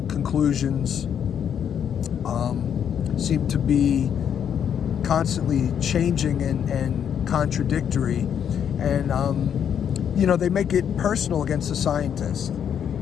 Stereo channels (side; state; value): right; quieter; 8.5 dB